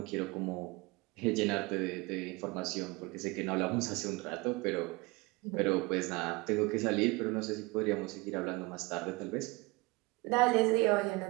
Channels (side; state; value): left; quieter; 24.6 dB